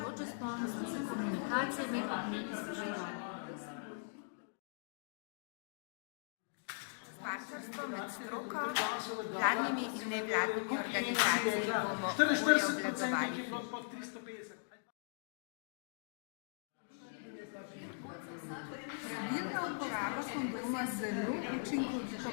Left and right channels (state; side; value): silent; right; digital silence